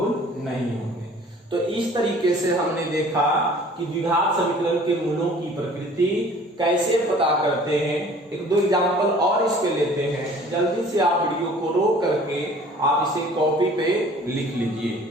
नहीं होंगे। तो इस तरीके से हमने देखा कि द्विघात समीकरण के मूलों की प्रकृति कैसे पता करते हैं। एक दो एग्जांपल और इस पे लेते हैं, जल्दी से आप वीडियो को रोक करके आप इसे कॉपी पे लिख लीजिए।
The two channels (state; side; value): normal; both; correlation 0.50